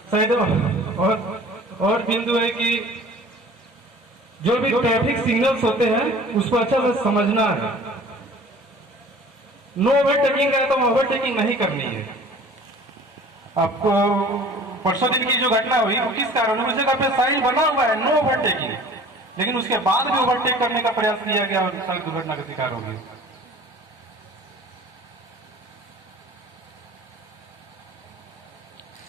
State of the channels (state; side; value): normal; both; correlation 0.47